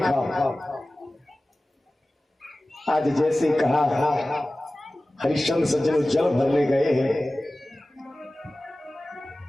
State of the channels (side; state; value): both; normal; correlation 0.97